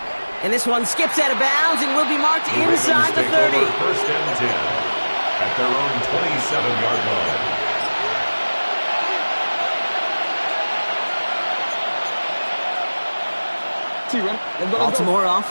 And this one skips out of bounds and will be marked inside the 30. 1st and 10 at their own 27-yard line. Baltimore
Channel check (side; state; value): both; inverted; correlation -1.00